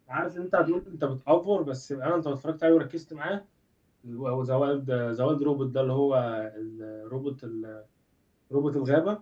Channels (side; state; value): both; identical; correlation 1.00